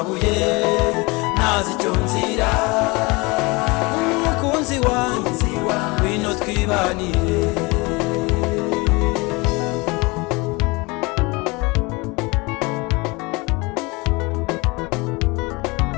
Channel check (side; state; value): right; quieter; 25.7 dB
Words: ntazi icyo nzira mukunzi wanjye bino twibanire